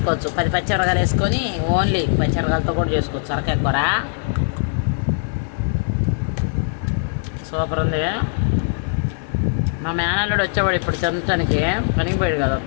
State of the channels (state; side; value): silent; right; digital silence